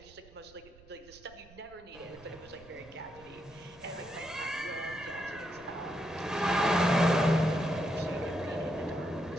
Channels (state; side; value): noise; right; rumble, 23 dB below the sound